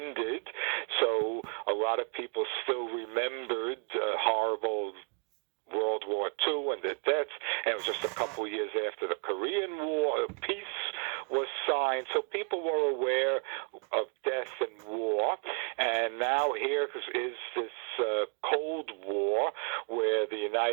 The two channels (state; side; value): quieter; left; 37.7 dB